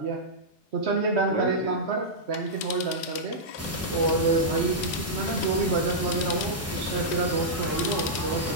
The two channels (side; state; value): both; normal; correlation -0.10